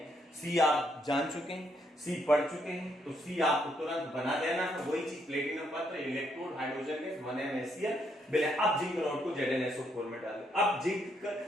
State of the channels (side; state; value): both; normal; correlation 0.74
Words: सी आप जान चुके हैं, सी पढ़ चुके हैं, तो सी आपको तुरंत बना देना है। वही चीज प्लेटिनम पत्र, इलेक्ट्रोड, हाइड्रोजन गैस, 1MaCl। अब जिंक रॉड को ZnSO4 में डालें। अब जिंक